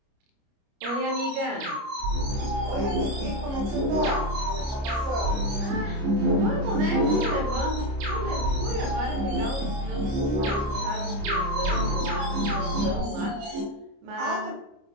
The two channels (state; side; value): late; left; 29 ms